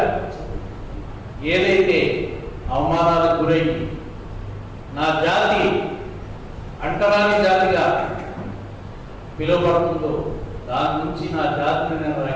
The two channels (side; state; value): both; identical; correlation 1.00